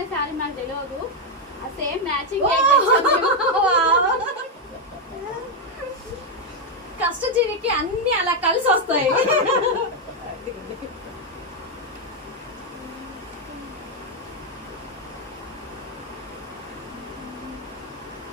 శారీ నాకు తెలియదు, ఆ సేమ్ మ్యాచింగ్. కష్టజీవికి అన్ని అలా కలిసి వస్తాయి.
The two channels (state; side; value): normal; both; correlation 0.03